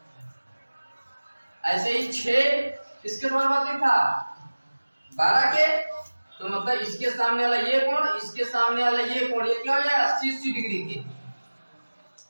ऐसे ही 6 किसके समानुपातिक था 12 के, तो मतलब इसके सामने वाला ये कोण, इसके सामने वाला ये कोण, ये क्या हो जाएगा 80 डिग्री के,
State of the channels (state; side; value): inverted; both; correlation -1.00